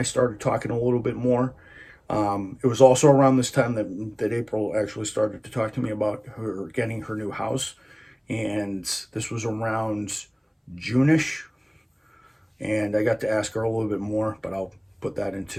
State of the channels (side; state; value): both; identical; correlation 1.00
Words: started talking a little bit more. It was also around this time that April actually started to talk to me about her getting her new house, and this was around June-ish, and I got to ask her a little bit more, but I'll put that